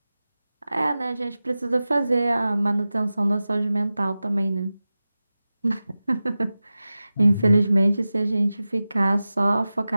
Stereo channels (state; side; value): inverted; both; correlation -0.95